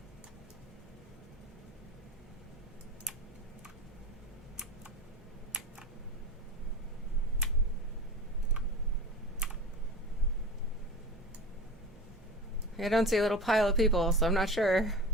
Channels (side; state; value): both; normal; correlation 0.30